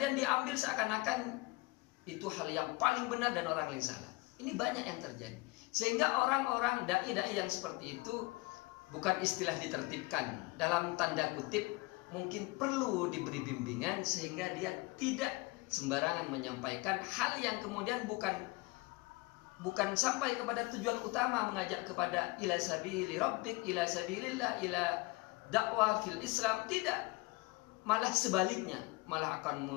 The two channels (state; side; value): quieter; right; 23.8 dB